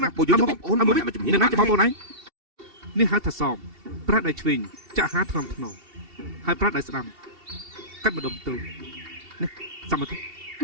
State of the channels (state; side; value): late; left; 2.7 ms